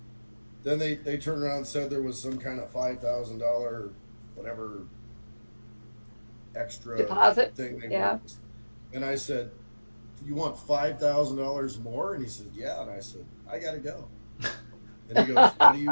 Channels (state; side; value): inverted; both; correlation -1.00